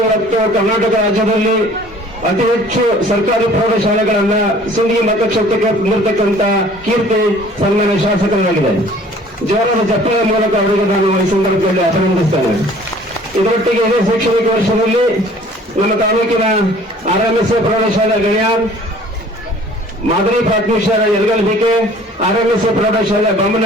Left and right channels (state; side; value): normal; both; correlation 0.52